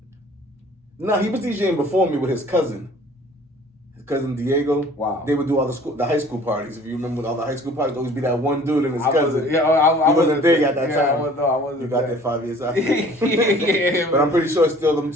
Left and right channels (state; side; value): normal; both; correlation 0.50